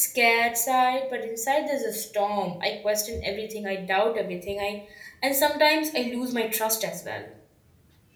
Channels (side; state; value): both; identical; correlation 1.00